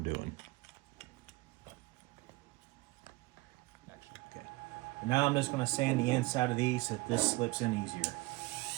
doing. Okay. And now I'm just going to sand the inside of these so that this slips in easier.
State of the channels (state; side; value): quieter; left; 21.9 dB